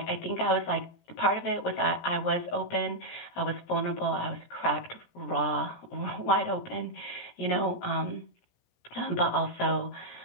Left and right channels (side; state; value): right; late; 17 ms